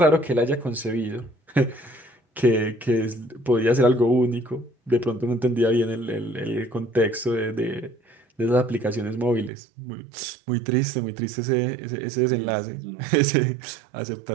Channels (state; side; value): drops out; left; at 9.5 s